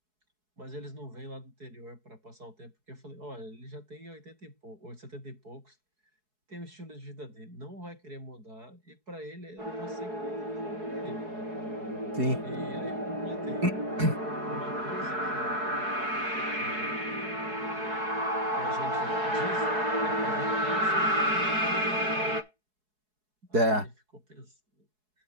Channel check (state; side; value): late; left; 4.7 ms